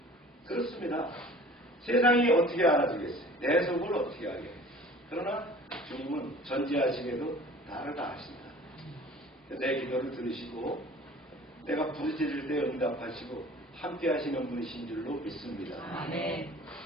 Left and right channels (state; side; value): normal; both; correlation 0.46